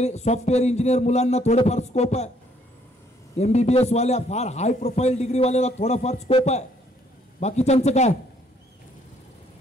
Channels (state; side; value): normal; both; correlation 0.66